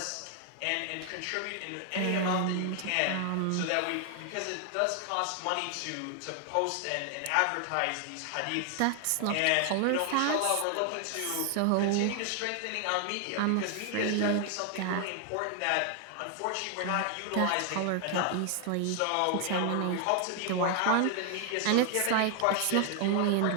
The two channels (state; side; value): different; both; correlation 0.00